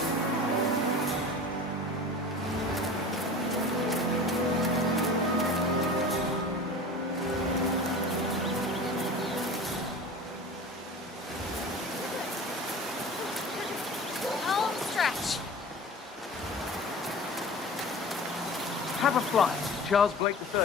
Have a flight. Charles Blake III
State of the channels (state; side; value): normal; both; correlation 0.37